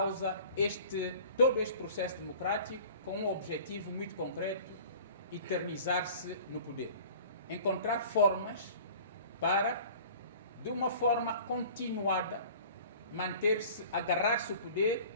todo este processo democrático com um objetivo muito concreto: eternizar-se no poder. Encontrar formas para, de uma forma continuada, manter-se, agarrar-se ao poder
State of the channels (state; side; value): inverted; both; correlation -0.45